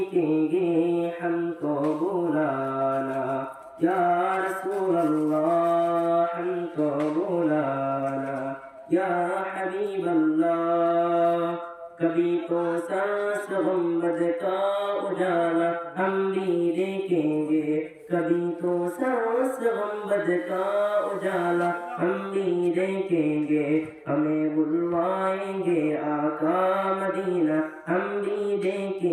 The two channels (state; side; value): identical; both; correlation 1.00